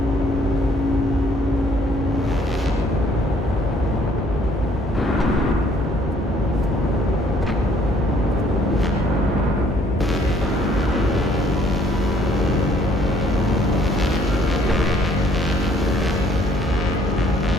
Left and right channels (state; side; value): normal; both; correlation 0.63